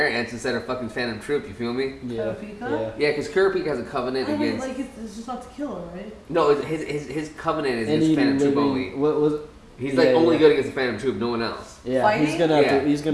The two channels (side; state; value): both; identical; correlation 1.00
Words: ants instead of fucking Phantom Troop. You feel me? Yeah. Kurapika? Yeah, because Kurapika has a covenant I mean, against. like, it's just not to kill her, right? No, his covenant is Any against Phantom Troop living- only. What was? He's Yeah, like only yeah. good against the Phantom Troop, no one else. Yeah, Fighting? he's gonna have Yeah. to. He's